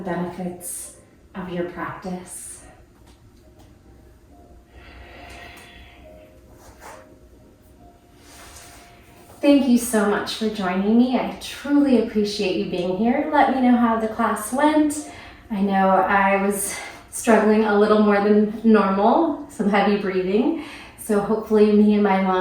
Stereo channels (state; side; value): identical; both; correlation 1.00